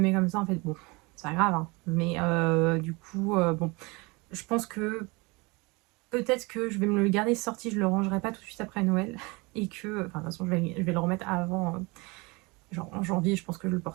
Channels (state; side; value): quieter; left; 26.2 dB